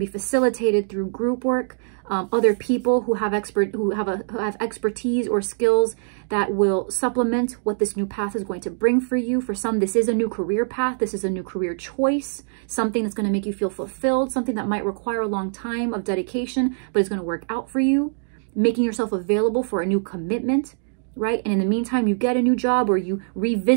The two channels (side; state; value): left; silent; digital silence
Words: be facilitated through group work, other people who have expertise or skills that will supplement what this new path is going to bring for you. For some, this is a new career path. This is a new career choice, something that's going to make you feel fulfilled, something that might require a long time of dedication, but it's going to work out for you, making yourself available for a new commitment, right? And in the meantime, you get a new job or you